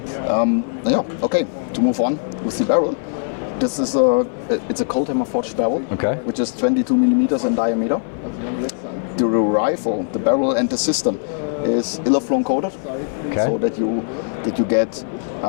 Okay. To move on with the barrel. This is it's a cold hammer forged barrel, which is 22 millimeters in diameter. The rifle, the barrel, and the system is Ilaflon coated, so that you get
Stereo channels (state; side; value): silent; right; 66 dB below the other